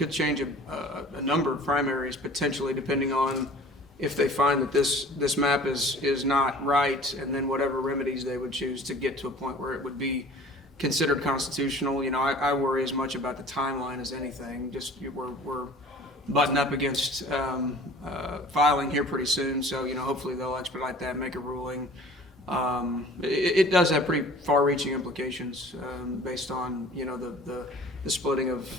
change a number of primaries potentially, depending on if they find that this map is not right, and then whatever remedies they would choose to get to a point where it would be considered constitutional. You know, I worry as much about the timeline as anything. Just we're butting up against filing here pretty soon, so you know, hopefully they'll expedite that, make a ruling. It does have pretty far-reaching implications based on, you know, the splitting of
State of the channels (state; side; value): normal; both; correlation 0.46